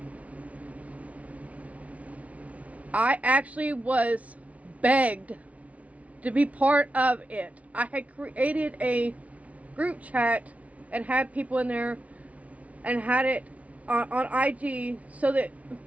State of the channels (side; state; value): left; late; 0.067 ms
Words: I actually was begged to be part of it. I had created a group chat and had people in there and had it on IG so that